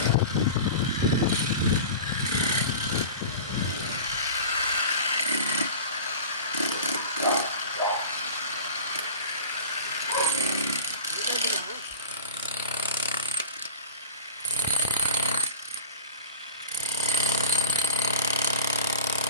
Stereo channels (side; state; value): both; inverted; correlation -0.37